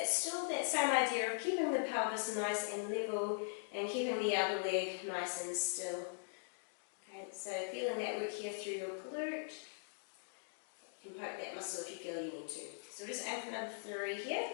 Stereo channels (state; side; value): silent; right; digital silence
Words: still that same idea of keeping the pelvis nice and level and keeping the other leg nice and still. Okay, so feeling that work here through your glute. You can poke that muscle if you feel you need to. So we'll just aim for number 3 here.